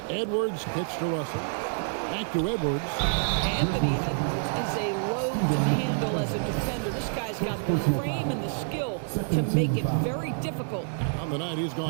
Edwards pitch to Russell. Back to Edwards. Anthony Edwards is a load to handle as a defender. This guy's got the frame and the skill to make it very difficult. On the night, he's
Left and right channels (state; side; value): silent; left; digital silence